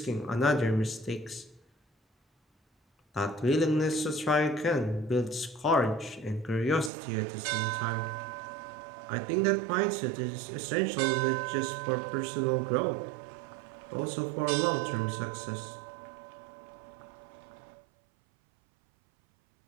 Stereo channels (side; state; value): left; drops out; at 6.9 s